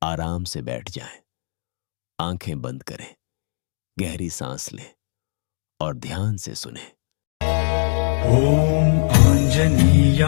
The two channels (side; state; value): right; silent; 65 dB below the other